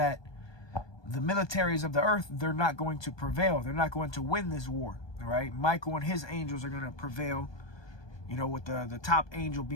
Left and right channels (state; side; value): late; right; 1.2 ms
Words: the militaries of the earth, they're not going to prevail. They're not going to win this war. All right, Michael and his angels are going to prevail, with the top angel